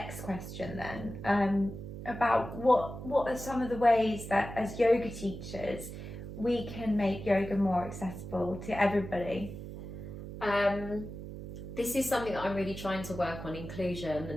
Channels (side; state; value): right; noise; hum, 10 dB below the sound